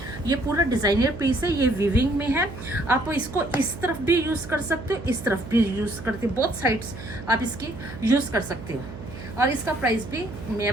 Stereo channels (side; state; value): right; noise; hum, 13 dB below the sound